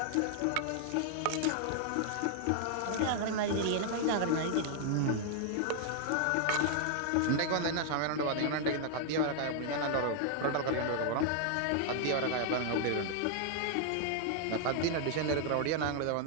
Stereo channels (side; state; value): both; different; correlation 0.00